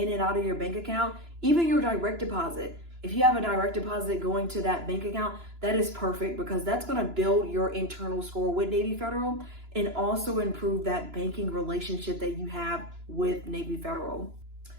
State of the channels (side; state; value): left; late; 2.9 ms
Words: and out of your bank account, even your direct deposit. If you have a direct deposit going to that bank account, that is perfect because that's going to build your internal score with Navy Federal and also improve that banking relationship that you have with Navy Federal.